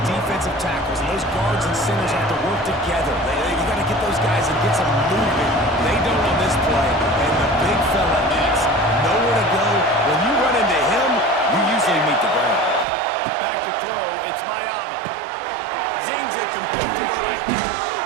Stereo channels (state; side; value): drops out; left; at 12.9 s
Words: defensive tackles, and those guards and centers have to work together. You got to get those guys and get some movement. They don't on this play, and the big fella is nowhere to go. When you run into him, you usually meet the ground. Back to throw, it's Mayava. Zings it complete to the right.